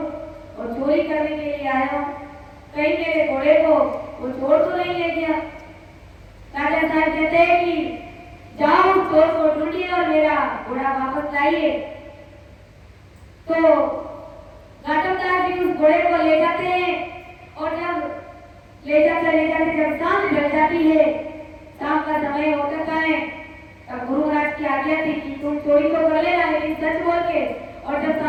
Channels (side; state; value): both; identical; correlation 1.00